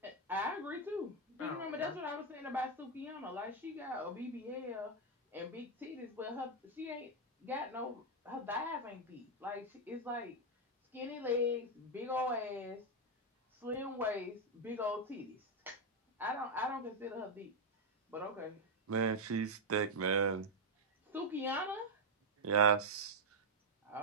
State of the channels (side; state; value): both; normal; correlation 0.00